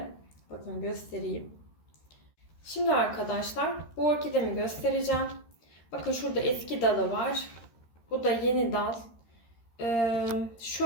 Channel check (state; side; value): late; right; 13 ms